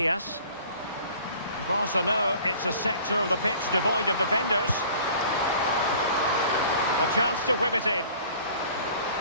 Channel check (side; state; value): both; inverted; correlation -0.49